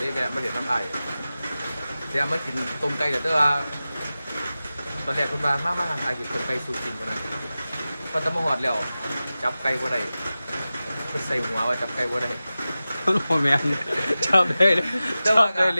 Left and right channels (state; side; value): inverted; both; correlation -0.95